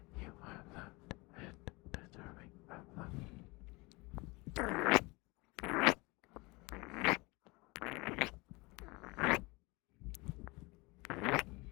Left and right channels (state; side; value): quieter; right; 25.2 dB